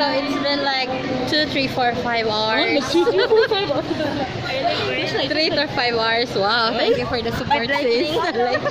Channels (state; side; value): identical; both; correlation 1.00